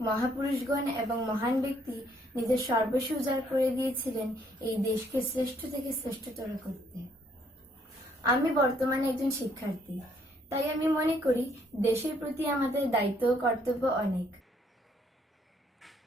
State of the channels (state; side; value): normal; both; correlation 0.67